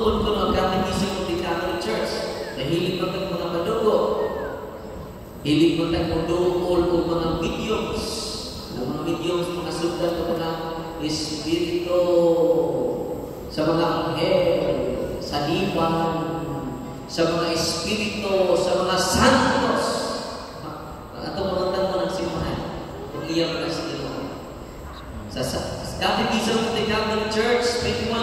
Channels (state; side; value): identical; both; correlation 1.00